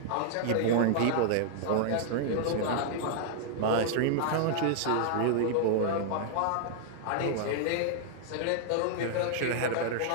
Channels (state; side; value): different; both; correlation -0.01